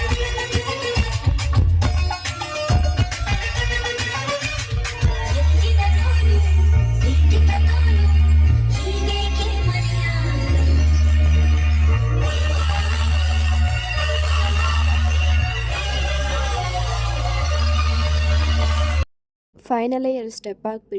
ಫೈನಲಿ 2 ಸ್ಟೆಪ್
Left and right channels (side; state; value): both; identical; correlation 1.00